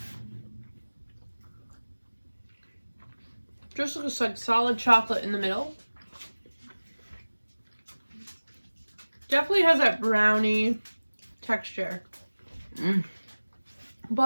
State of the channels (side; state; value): both; inverted; correlation -1.00